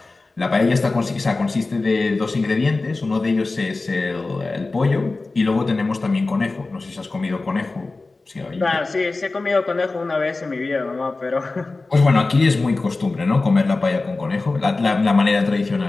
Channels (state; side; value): quieter; right; 3.5 dB